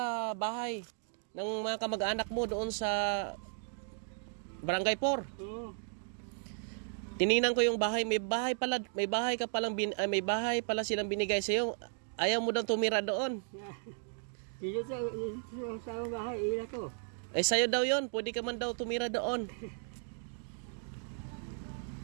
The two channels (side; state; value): left; silent; digital silence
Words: bahay ng mga kamag-anak mo doon sa Barangay 4. Oo. Tiningnan ko yung bahay, may bahay pala silang binigay sa iyo. Ayaw mo daw tumira doon. Dito sa bahay, ila ko. Eh sa'yo daw 'yon, pwede ka man daw tumira doon.